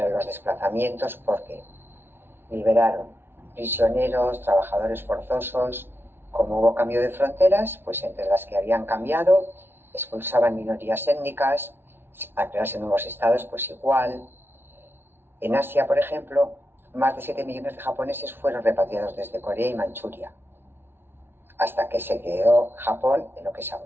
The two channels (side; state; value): left; late; 0.11 ms